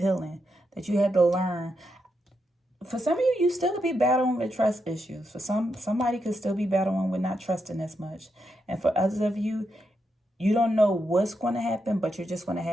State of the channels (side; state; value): both; normal; correlation 0.83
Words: that you had to learn. For some of you, you still could be battling with trust issues. For somebody could still be battling with not trusting as much. And for others of you, you don't know what's going to happen, but you're just going to